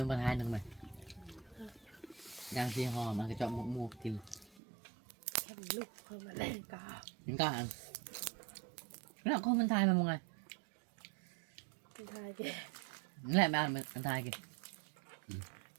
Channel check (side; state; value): left; drops out; at 4.5 s